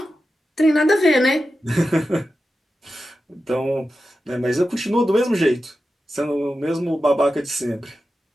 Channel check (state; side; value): normal; both; correlation 0.91